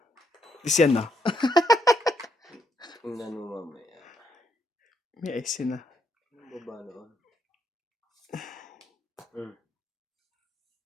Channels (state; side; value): normal; both; correlation 0.75